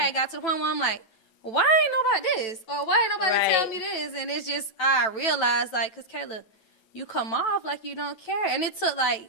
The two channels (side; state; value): right; late; 9.1 ms